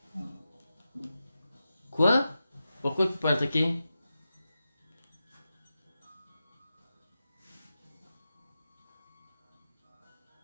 Quoi? Pourquoi tu peux pas attaquer?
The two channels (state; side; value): inverted; both; correlation -0.91